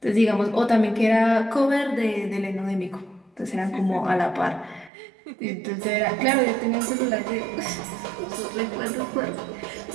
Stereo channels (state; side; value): drops out; left; at 4.9 s